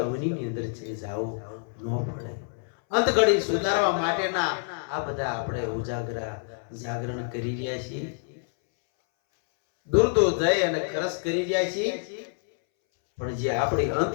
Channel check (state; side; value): silent; right; 60 dB below the other